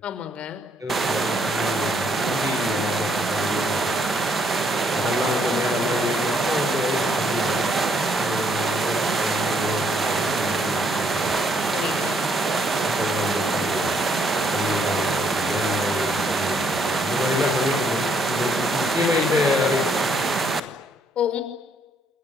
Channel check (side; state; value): both; normal; correlation 0.70